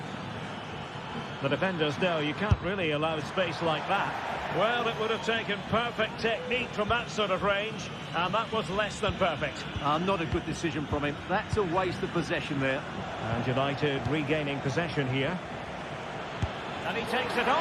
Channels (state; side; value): identical; both; correlation 1.00